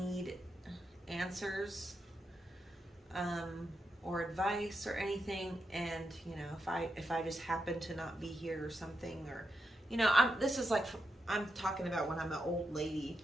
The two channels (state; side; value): normal; both; correlation 0.85